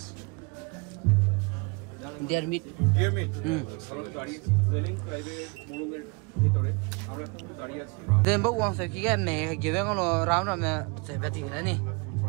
deer meat Dear me. then bốc uống sẽ cái mẹ kiểu vậy nó rau nó mẹ sẽ phải tiền đấy nè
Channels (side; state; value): left; quieter; 31.2 dB